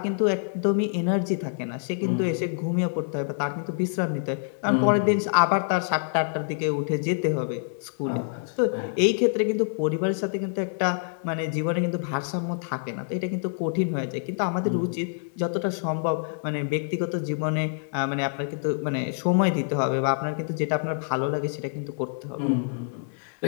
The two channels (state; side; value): silent; right; 60 dB below the other